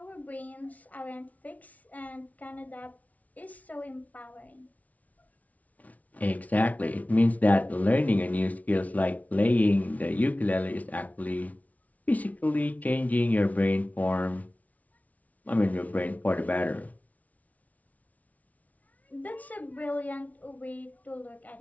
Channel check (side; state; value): right; late; 0.071 ms